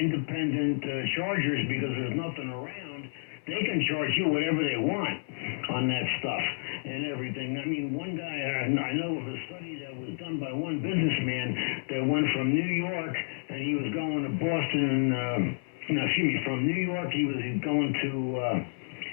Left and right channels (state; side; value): silent; right; digital silence